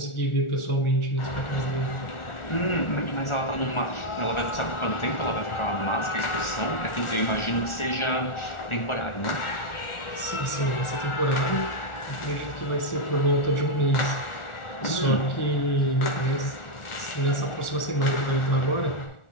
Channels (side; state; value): right; late; 1.4 ms